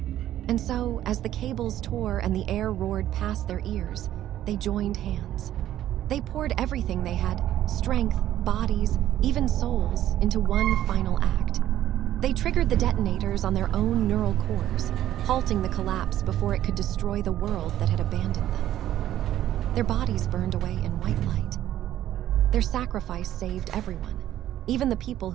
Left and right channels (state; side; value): quieter; left; 12.5 dB